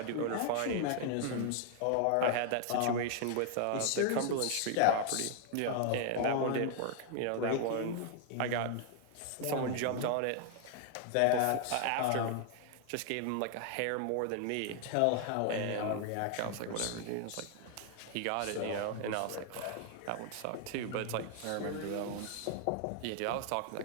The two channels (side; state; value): both; different; correlation 0.00